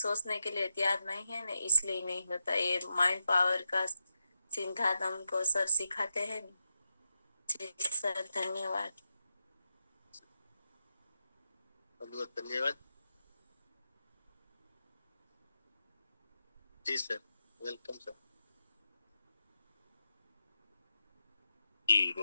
के लिए तैयार नहीं है ना, इसलिए नहीं होता। ये माइंड पावर का सिद्धांत हमको सर सिखाते हैं। जी सर धन्यवाद। बहुत बहुत धन्यवाद। जी सर, वेलकम सर। जी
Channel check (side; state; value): both; inverted; correlation -0.88